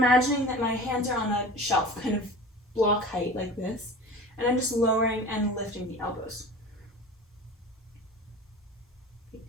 that my hands are on a shelf, kind of block height like this, and I'm just lowering and lifting the elbows.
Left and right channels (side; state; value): both; normal; correlation 0.37